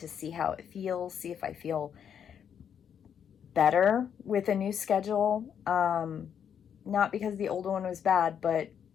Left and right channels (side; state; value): right; quieter; 8.2 dB